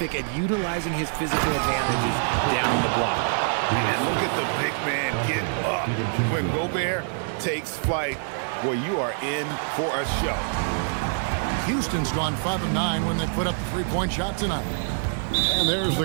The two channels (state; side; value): silent; left; digital silence